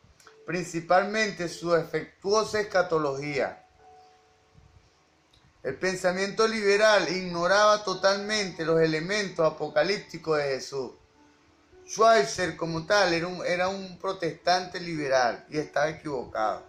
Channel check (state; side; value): identical; both; correlation 1.00